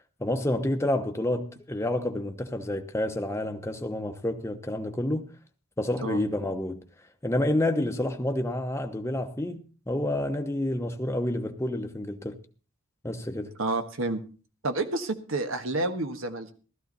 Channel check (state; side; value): normal; both; correlation 0.65